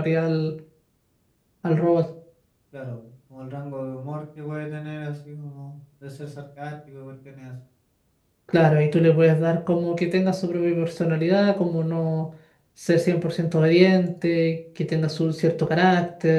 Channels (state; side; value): identical; both; correlation 1.00